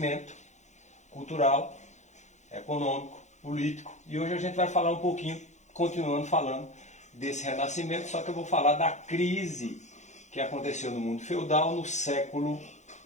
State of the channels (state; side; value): late; right; 0.34 ms